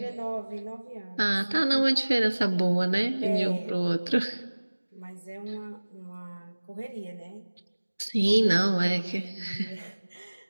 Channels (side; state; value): both; inverted; correlation -1.00